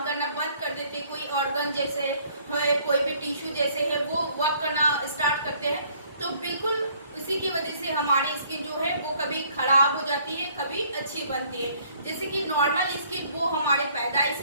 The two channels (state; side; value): inverted; both; correlation -0.61